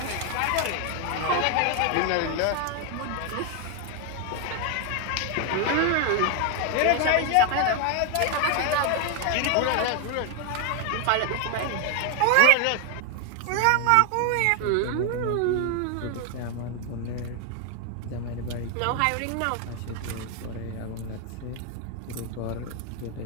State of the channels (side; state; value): both; different; correlation 0.00